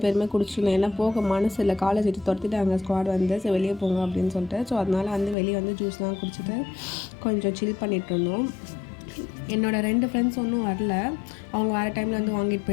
பேருமே குடிச்சிருந்தோம். ஏன்னா போக மனசு இல்லை, காலேஜ் விட்டு துரத்திட்டாங்க ஸ்குவாட் வந்து. ஸோ வெளியே போங்க அப்படின்னு சொல்லிட்டு. ஸோ அதனால் வந்து வெளியே வந்து ஜூஸ்லாம் குடிச்சிட்டு கொஞ்சம் சில் பண்ணிகிட்டு இருந்தோம். என்னோடய 2 ஃப்ரெண்ட்ஸ் ஒன்றும் வரல. அவங்க வேறு டைமில் வந்து வாங்கிட்டு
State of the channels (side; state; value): right; drops out; at 5.4 s